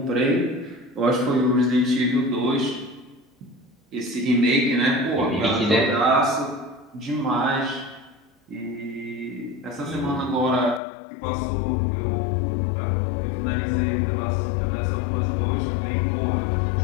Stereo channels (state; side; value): drops out; right; at 10.8 s